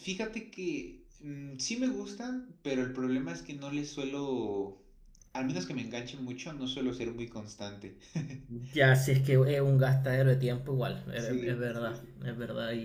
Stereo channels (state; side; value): identical; both; correlation 1.00